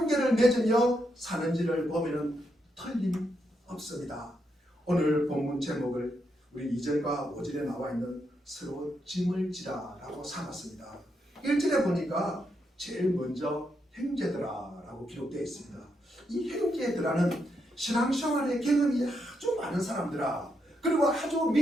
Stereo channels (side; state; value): both; normal; correlation 0.81